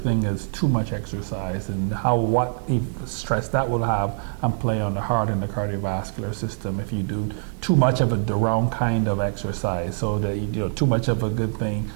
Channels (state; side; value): silent; left; digital silence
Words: as too much exercise, and what stress that will have and play on the heart and the cardiovascular system if you do too much of the wrong kind of exercise, so that too much of a good thing